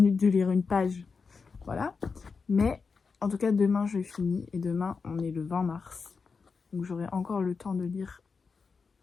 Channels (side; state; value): right; quieter; 5.0 dB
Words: de lire une page. Voilà. Mais en tout cas, demain, je finis. Et demain, on est le 20 mars. Donc j'aurai encore le temps de lire